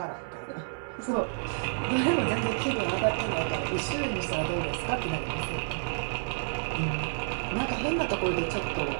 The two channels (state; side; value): silent; left; digital silence